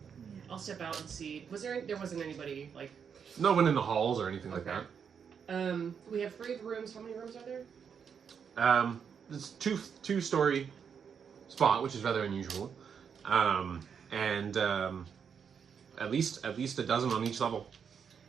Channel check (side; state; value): left; quieter; 7.0 dB